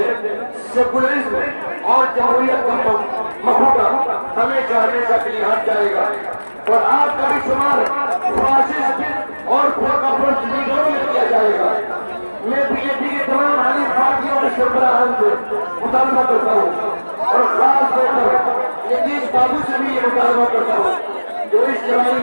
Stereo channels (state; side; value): inverted; both; correlation -1.00